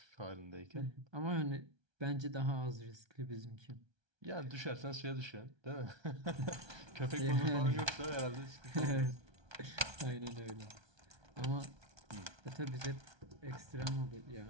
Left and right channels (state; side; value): late; left; 1.2 ms